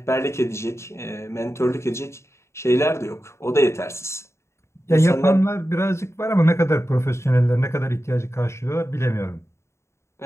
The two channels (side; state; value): right; late; 0.13 ms